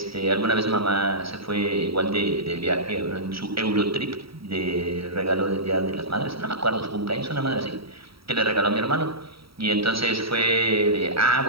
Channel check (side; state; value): left; late; 0.75 ms